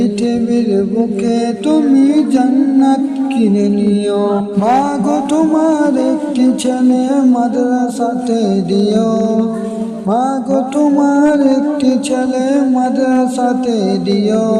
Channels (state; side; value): identical; both; correlation 1.00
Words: বুকে তুমি জান্নাত কিনে নিও। মা গো তোমার একটি ছেলে মাদ্রাসাতে দিও। মা গো তোমার একটি ছেলে মাদ্রাসাতে দিও।